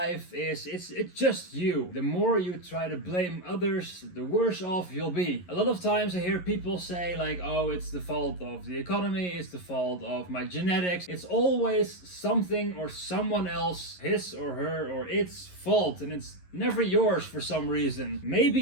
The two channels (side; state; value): right; late; 11 ms